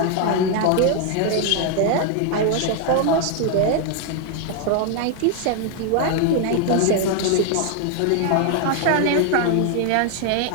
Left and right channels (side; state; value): both; different; correlation 0.00